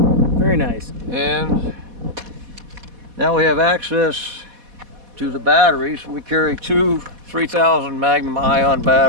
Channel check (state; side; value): late; left; 4.1 ms